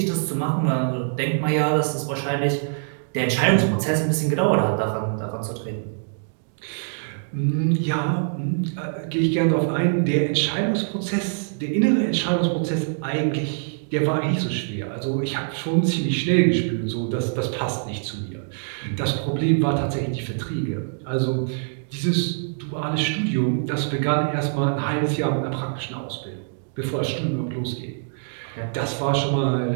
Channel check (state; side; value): silent; left; digital silence